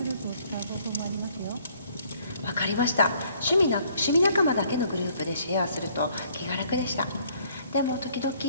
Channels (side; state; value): both; inverted; correlation -0.63